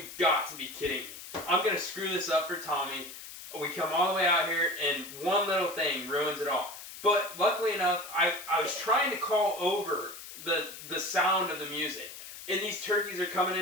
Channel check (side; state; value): left; noise; hiss, 13 dB below the sound